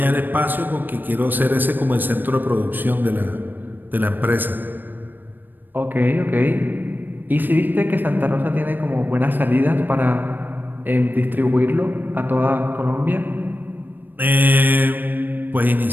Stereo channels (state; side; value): late; left; 0.091 ms